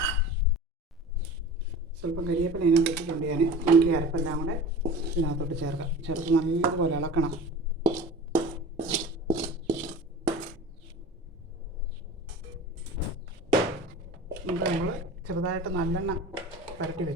സ്വല്പം കരിവേപ്പില ഇതിനകത്ത് വെച്ചിട്ടുണ്ട് ഞാൻ. നമുക്ക് ഈ അരപ്പെല്ലാം കൂടെ ഇതിനകത്തോട്ട് ചേർക്കാം. ചേർത്ത് നല്ലപോലെ ഇളക്കണം. ഇത് നമ്മൾ ചെറുതായിട്ട് നല്ലെണ്ണ പരട്ടി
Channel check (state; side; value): normal; both; correlation 0.37